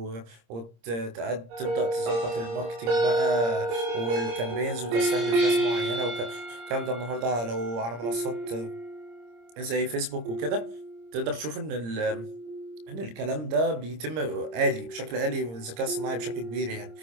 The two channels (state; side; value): late; left; 26 ms